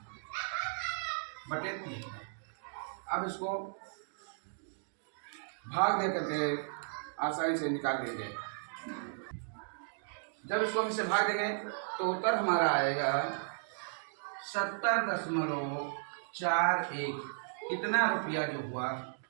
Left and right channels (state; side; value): silent; left; digital silence